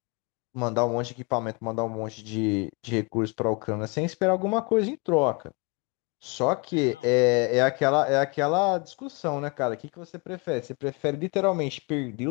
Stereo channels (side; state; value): right; quieter; 30.6 dB